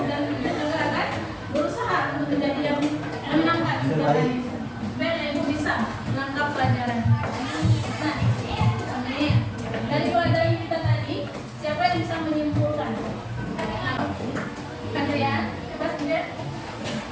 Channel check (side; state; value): both; identical; correlation 1.00